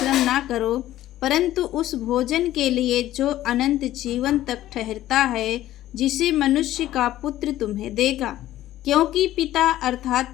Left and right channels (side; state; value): right; quieter; 14.1 dB